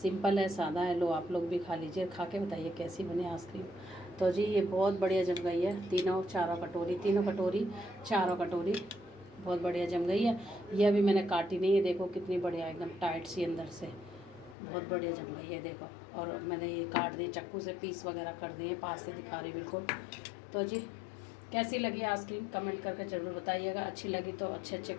सिंपल है, सादा है। लो आप लोग भी खा लीजिए, खा के बताइए कैसी बनी आइसक्रीम। तो जी ये बहुत बढ़िया जम गई है, तीनों कटोरी चारों कटोरी बहुत बढ़िया जम गई है। ये अभी मैंने काटी नहीं है, देखो कितनी बढ़िया एकदम टाइट सी अंदर से, बहुत बढ़िया जम गई है देखो। और मैंने ये काट दिए चाकू से, पीस वगैरह कर दिए, पास से दिखा रही बिल्कुल। तो जी कैसी लगी आइसक्रीम कमेंट करके ज़रूर बताइएगा। अच्छी लगी तो अच्छे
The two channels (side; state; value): right; drops out; at 14.6 s